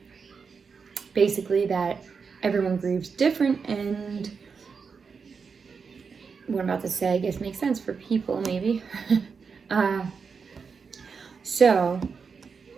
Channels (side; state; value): left; quieter; 5.5 dB